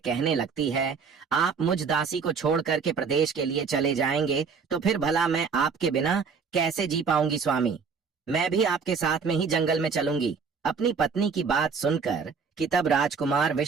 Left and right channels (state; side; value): quieter; left; 5.6 dB